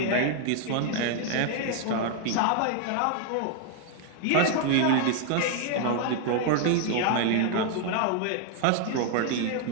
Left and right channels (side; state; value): both; different; correlation 0.00